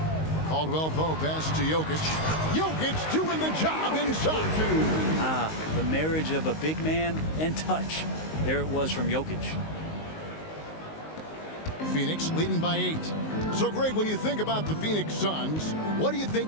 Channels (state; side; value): late; right; 19 ms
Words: Caldwell Pope pass to Jokic. Jokic doing the job inside. The marriage of a big man and touch. There it was from Jokic. Phoenix leading by 8. So, Greg, when you think about the Phoenix Suns, what do you think